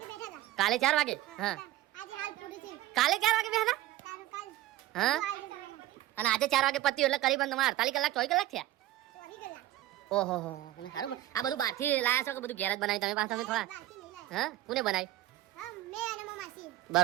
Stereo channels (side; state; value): left; quieter; 14.6 dB